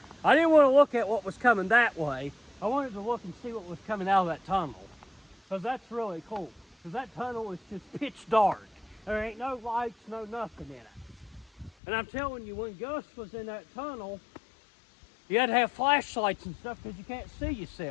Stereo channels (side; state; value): right; drops out; at 11.7 s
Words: I didn't want to look at what was coming that way. I wanted to look and see what was coming out of that tunnel. Because that's really cool. Because that tunnel is just pitch dark. There ain't no lights, no nothing in it. And I'm telling you, when Gus was in that tunnel, you had to have flashlights and stuff because you can't see